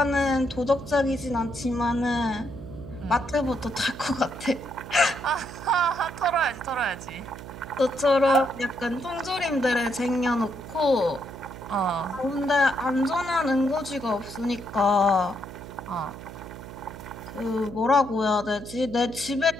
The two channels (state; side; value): noise; right; hum, 13 dB below the sound